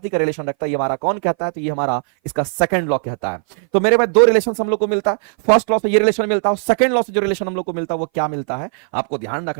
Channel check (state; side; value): silent; left; 59 dB below the other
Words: का रिलेशन रखता है। ये हमारा कौन कहता है, तो ये हमारा इसका सेकंड लॉ कहता है। तो मेरे पास दो रिलेशन हम लोग को मिलता है, फर्स्ट लॉ से ये रिलेशन मिलता है, सेकंड लॉ से जो रिलेशन हम लोग को मिलता है वो क्या मिलता है, आपको ध्यान